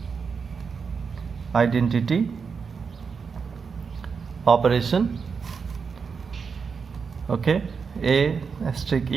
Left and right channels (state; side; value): quieter; left; 5.7 dB